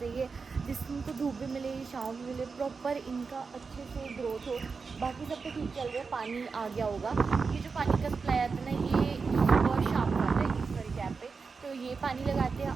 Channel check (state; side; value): quieter; left; 4.9 dB